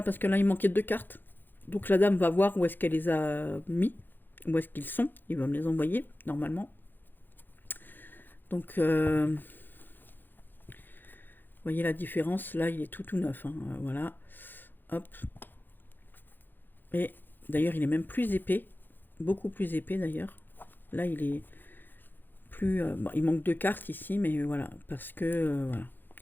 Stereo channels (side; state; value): right; late; 0.092 ms